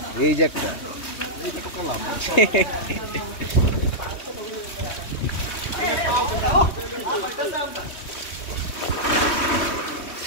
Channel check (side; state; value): right; late; 3.1 ms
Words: এই যে একটা